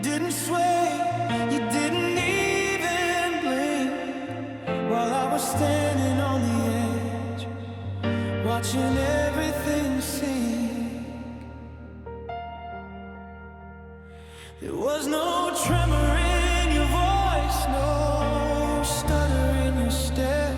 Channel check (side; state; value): both; identical; correlation 1.00